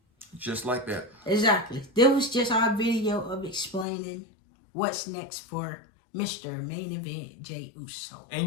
Just like that. Exactly. That was just our video of explaining what's next for Mr. Main Event Jey Uso.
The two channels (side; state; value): right; drops out; at 3.9 s